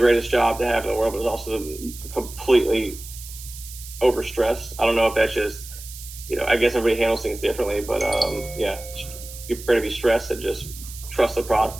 job to have in the world, but it's also completely overstressed. I don't know if that's just I guess everybody handles things differently, but yeah, you're prepared to be stressed and just trust the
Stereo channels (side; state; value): right; noise; hiss, 14 dB below the sound